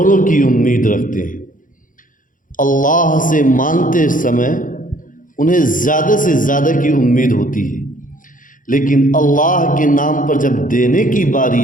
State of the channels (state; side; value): late; right; 0.39 ms